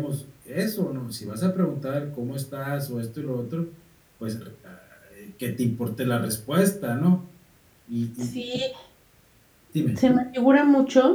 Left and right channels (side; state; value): both; identical; correlation 1.00